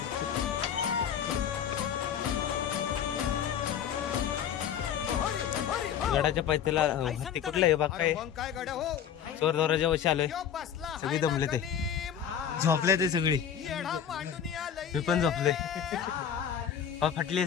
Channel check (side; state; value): right; quieter; 8.8 dB